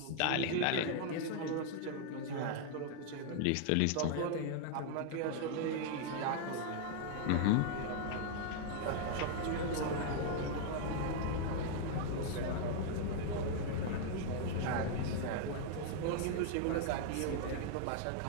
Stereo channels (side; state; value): both; different; correlation 0.00